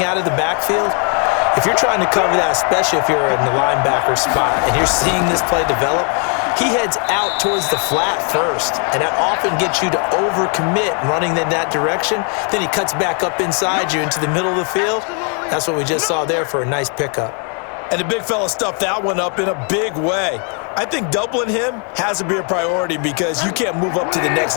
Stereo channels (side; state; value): right; quieter; 39.7 dB